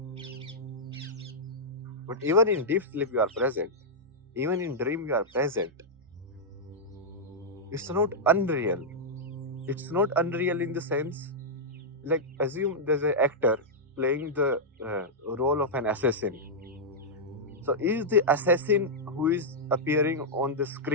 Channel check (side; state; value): both; normal; correlation -0.08